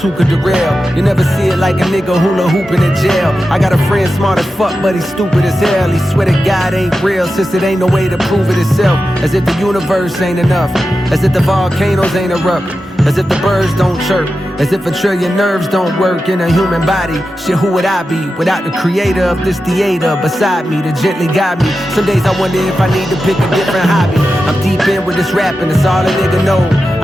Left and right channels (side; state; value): both; normal; correlation 0.91